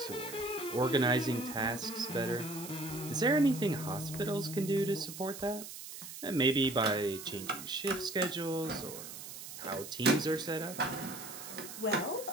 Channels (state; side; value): noise; right; hiss, 11 dB below the sound